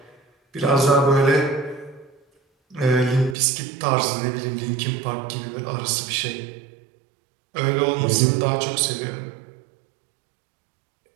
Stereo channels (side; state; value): left; drops out; at 3.4 s